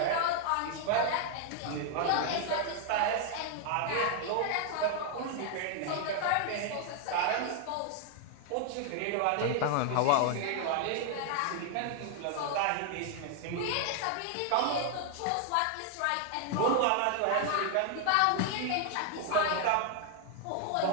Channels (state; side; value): different; both; correlation 0.00